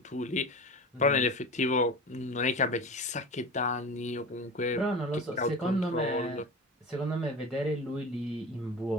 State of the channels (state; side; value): normal; both; correlation 0.31